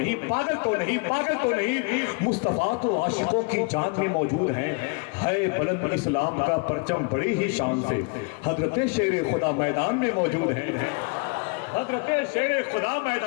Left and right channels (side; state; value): right; quieter; 32.5 dB